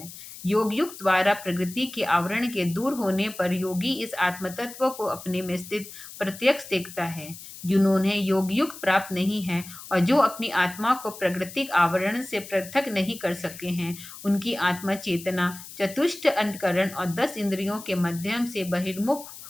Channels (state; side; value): noise; left; hiss, 14 dB below the sound